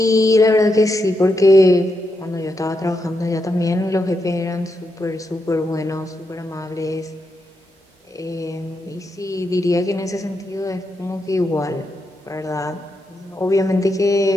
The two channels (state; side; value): normal; both; correlation 0.84